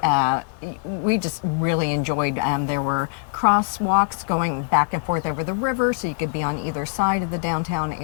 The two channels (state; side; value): silent; right; 64 dB below the other